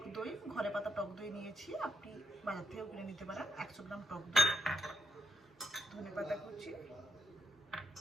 দই, ঘরে পাতা টক দই নিয়েছি, আপনি বাজার থেকেও কিনে নিতে পারেন। 100 গ্রাম টক দই, ধনেপাতা কুচি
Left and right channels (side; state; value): both; normal; correlation 0.78